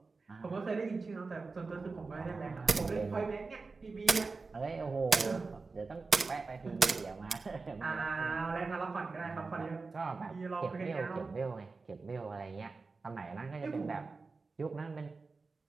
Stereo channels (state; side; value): quieter; left; 4.1 dB